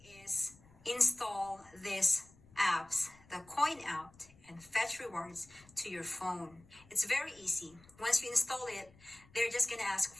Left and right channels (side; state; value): left; noise; rumble, 26 dB below the sound